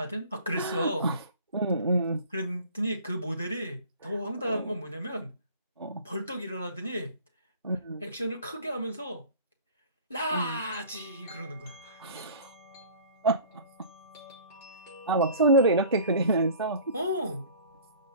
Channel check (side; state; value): both; inverted; correlation -0.47